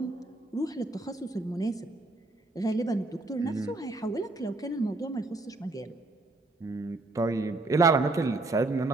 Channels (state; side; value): quieter; left; 3.1 dB